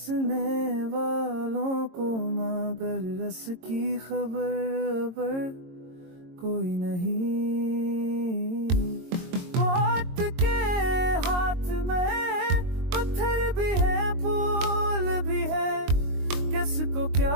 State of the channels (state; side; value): late; left; 22 ms